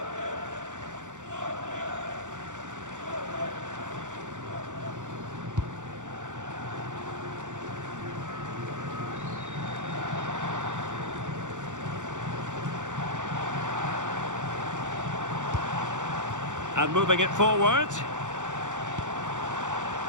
And moving it forward.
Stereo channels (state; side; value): late; left; 0.86 ms